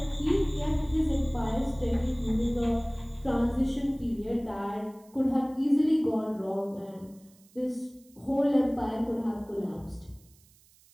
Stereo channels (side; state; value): right; noise; hiss, 29 dB below the sound